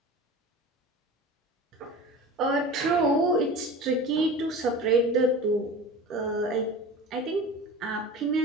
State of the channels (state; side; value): normal; both; correlation 0.35